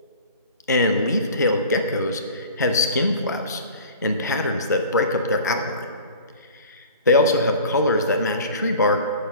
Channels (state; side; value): inverted; both; correlation -0.42